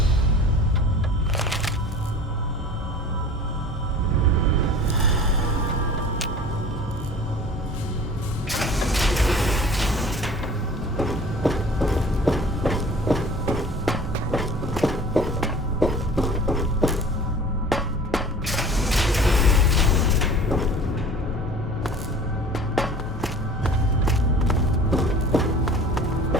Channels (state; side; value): normal; both; correlation 0.44